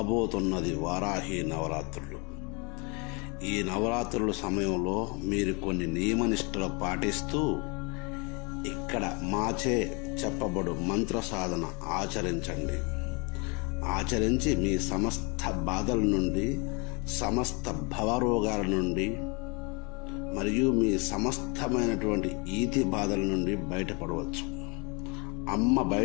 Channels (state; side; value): quieter; right; 30.9 dB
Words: వారాహి నవరాత్రులు. ఈ నవరాత్రుల సమయంలో మీరు కొన్ని నియమనిష్టలు పాటిస్తూ ఇక్కడ మాచే చెప్పబడు మంత్ర సాధన ఆచరించండి. ఆచరించి మీ సమస్త బాధల నుండి, సమస్త భవరోగాల నుండి మరియు మీ సమస్తమైనటువంటి ఈతి బాధల నుండి బయటపడవచ్చు. అమ్మ